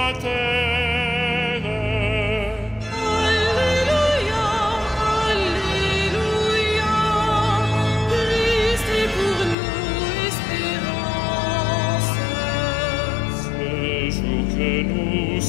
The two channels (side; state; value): right; drops out; at 9.6 s